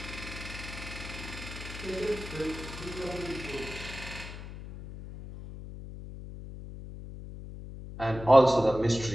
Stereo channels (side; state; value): left; noise; hum, 11 dB below the sound